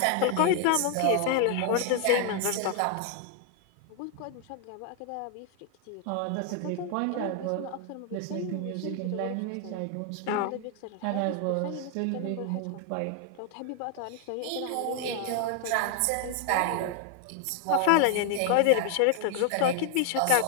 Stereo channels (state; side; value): different; both; correlation 0.00